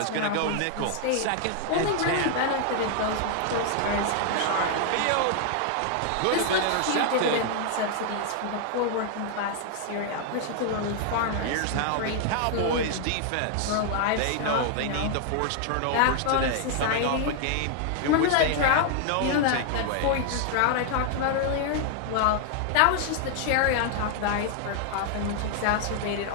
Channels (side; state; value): both; different; correlation 0.00